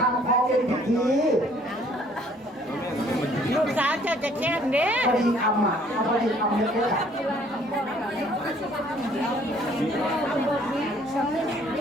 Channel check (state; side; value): normal; both; correlation 0.60